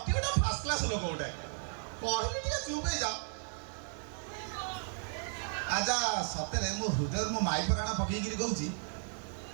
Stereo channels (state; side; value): silent; left; 55 dB below the other